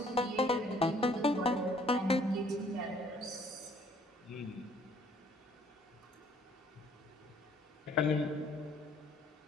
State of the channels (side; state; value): both; normal; correlation 0.60